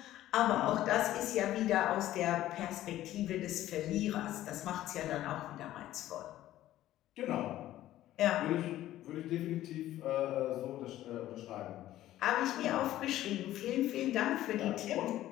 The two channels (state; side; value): quieter; right; 14.0 dB